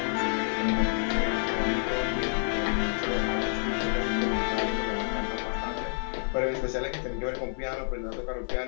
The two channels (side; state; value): right; silent; 59 dB below the other